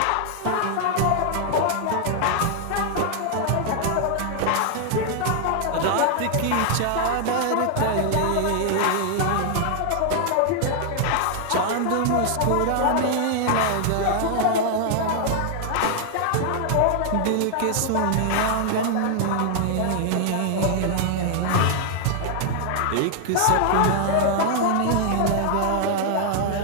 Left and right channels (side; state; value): both; different; correlation 0.00